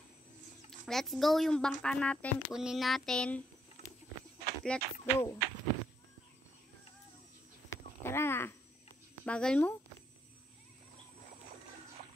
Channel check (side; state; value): both; normal; correlation 0.74